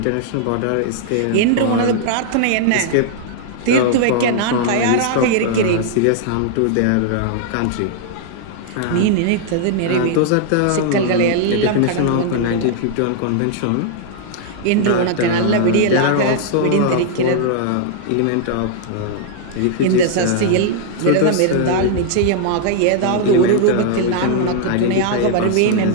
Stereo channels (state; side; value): different; both; correlation -0.01